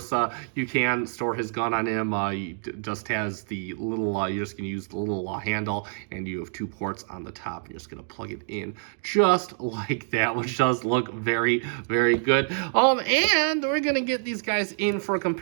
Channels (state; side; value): silent; left; 61 dB below the other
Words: you can store his gun on him. He just has the little, you're just gonna use the little handle, and you have 2 ports on the top. You're just gonna plug it in just like that, which does look very, very good. And we're gonna get these guys in for a